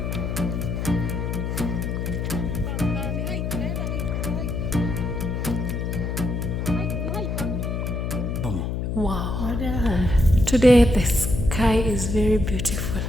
Wow. Today the sky is very beautiful.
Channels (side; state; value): left; noise; hum, 2 dB below the sound